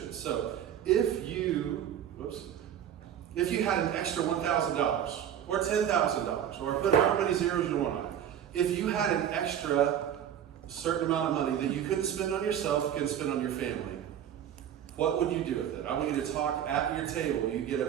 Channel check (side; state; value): left; quieter; 9.8 dB